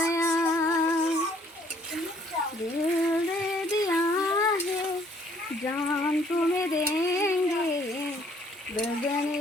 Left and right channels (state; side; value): normal; both; correlation 0.61